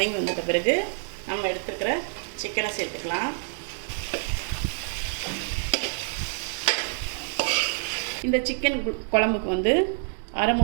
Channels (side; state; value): left; silent; digital silence